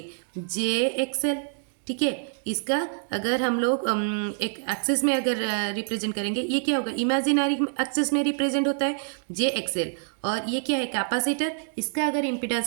JXL। ठीक है। इसका अगर हम लोग एक एक्सिस में अगर रिप्रेजेंट करेंगे, ये क्या होगा, इमेजिनरी एक्सिस में रिप्रेजेंट होता है JXL। और ये क्या है, कैपेसिटर। इसका अगर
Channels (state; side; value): silent; left; digital silence